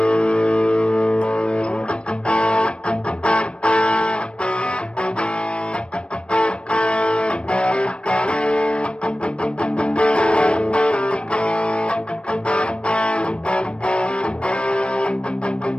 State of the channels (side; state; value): right; late; 0.058 ms